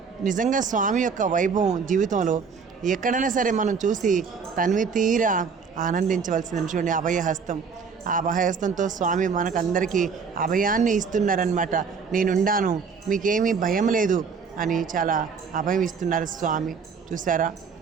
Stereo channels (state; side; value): quieter; left; 5.7 dB